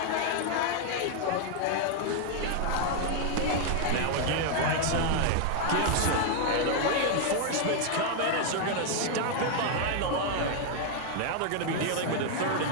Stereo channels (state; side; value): different; both; correlation 0.00